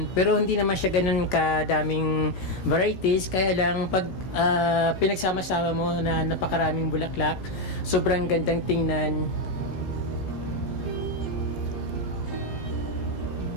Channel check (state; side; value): late; right; 16 ms